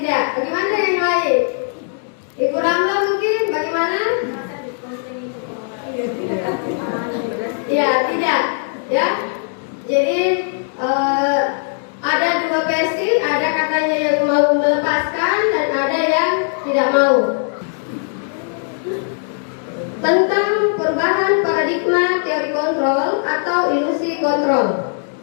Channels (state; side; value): silent; right; 67 dB below the other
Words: Bagaimana yang lain? Ibu Ramla mungkin? Bagaimana? Ya, tidak. Ya. Jadi ada dua versi, ada katanya yang mau melepaskan dan ada yang tidak mau. Tentang perubahan paradigma teori kontrol atau ilusi kontrol.